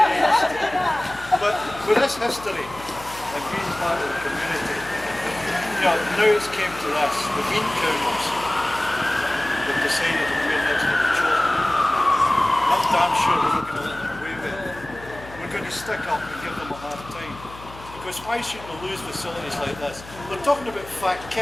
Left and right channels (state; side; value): noise; left; hum, 17 dB below the sound